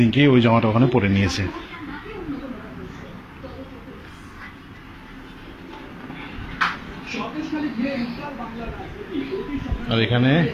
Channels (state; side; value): identical; both; correlation 1.00